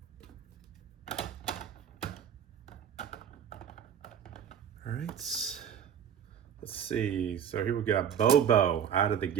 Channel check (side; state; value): left; quieter; 8.7 dB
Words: All right, let's see. So here we got Bobo out of the